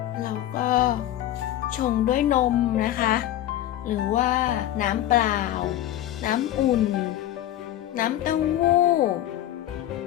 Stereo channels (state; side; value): quieter; right; 13.0 dB